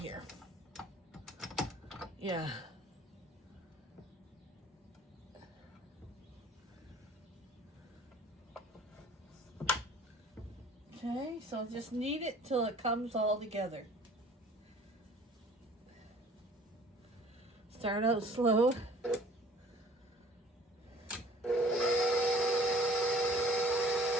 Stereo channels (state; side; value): normal; both; correlation 0.51